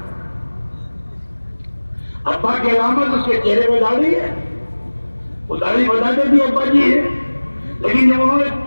ابا کی علامت اس کے چہرے پہ داڑھی ہے، وہ داڑھی بتاتے بھی ابا جی ہے، لیکن جب انہوں نے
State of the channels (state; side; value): inverted; both; correlation -1.00